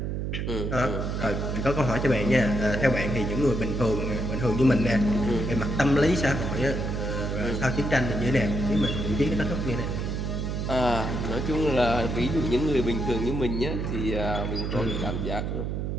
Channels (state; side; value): noise; right; hum, 2 dB below the sound